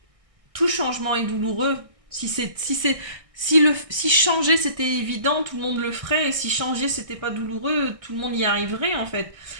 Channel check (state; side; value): late; left; 1.6 ms